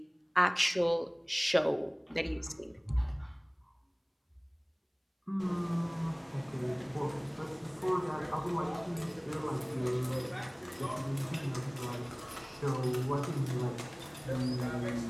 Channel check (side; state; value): both; identical; correlation 1.00